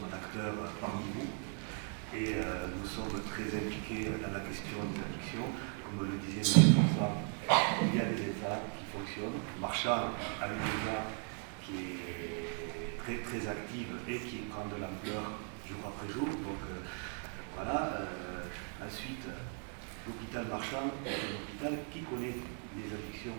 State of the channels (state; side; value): quieter; left; 38.8 dB